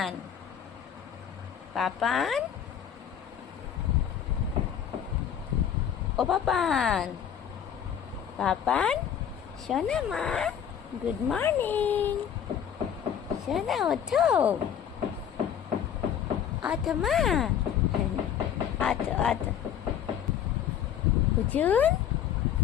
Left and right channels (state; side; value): quieter; right; 9.1 dB